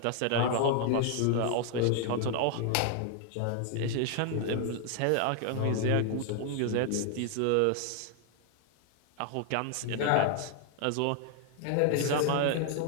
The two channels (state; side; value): different; both; correlation 0.00